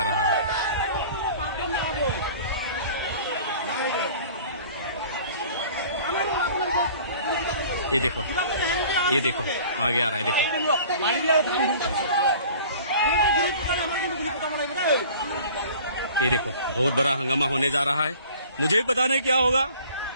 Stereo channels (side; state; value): both; inverted; correlation -0.47